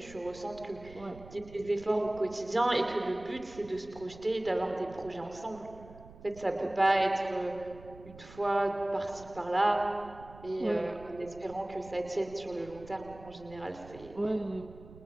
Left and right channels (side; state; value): right; noise; rumble, 18 dB below the sound